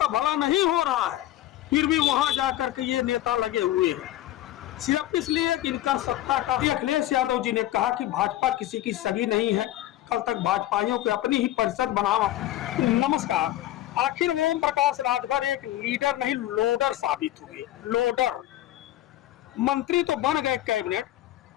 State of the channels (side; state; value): right; quieter; 14.3 dB